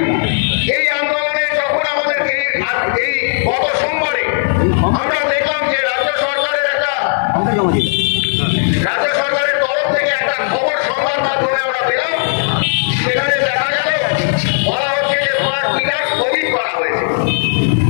এই আন্দোলনে যখন আমাদেরকে এই গত সোমবারে আমরা দেখলাম যে রাজ্য সরকারের তরফ থেকে একটা খবর সংবাদ মাধ্যমে আমরা পেলাম, সেখানে দেখা গেল বলা হচ্ছে যে স্মার্ট মিটার স্থগিত করা হয়েছে,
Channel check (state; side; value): silent; right; digital silence